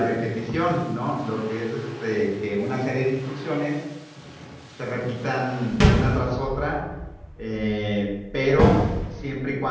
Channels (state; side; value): identical; both; correlation 1.00